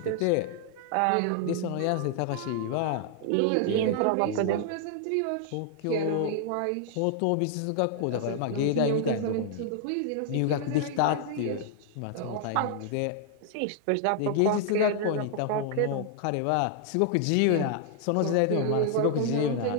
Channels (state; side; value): different; both; correlation 0.00